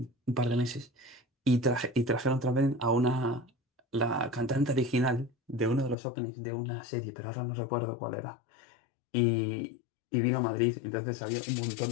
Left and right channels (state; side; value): drops out; right; at 6.0 s